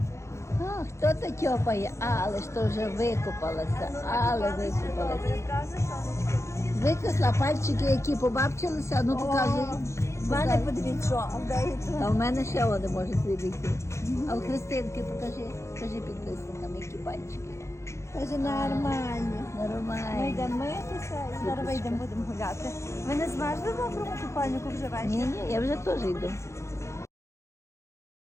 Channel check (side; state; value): right; late; 0.14 ms